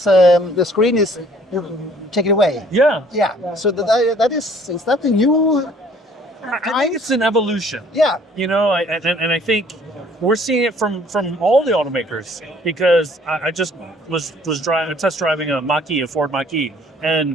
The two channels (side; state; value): both; normal; correlation 0.58